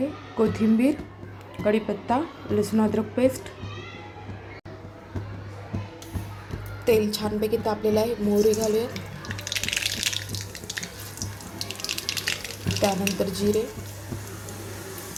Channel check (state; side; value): identical; both; correlation 1.00